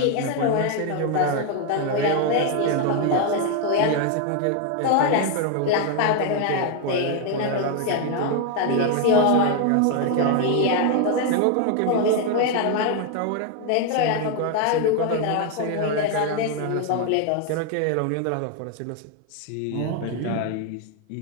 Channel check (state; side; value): different; both; correlation 0.01